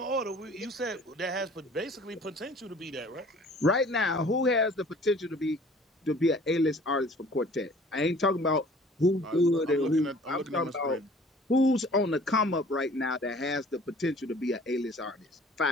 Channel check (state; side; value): normal; both; correlation 0.51